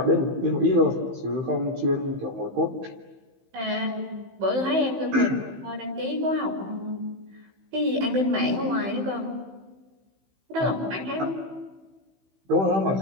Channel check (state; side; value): late; left; 15 ms